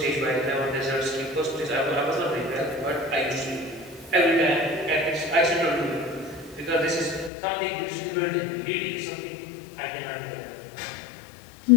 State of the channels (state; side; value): drops out; right; at 7.3 s